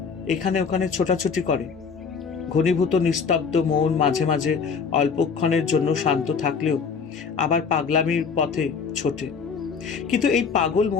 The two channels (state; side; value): quieter; right; 5.8 dB